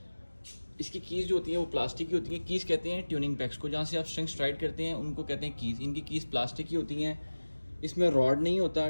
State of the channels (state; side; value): inverted; both; correlation -1.00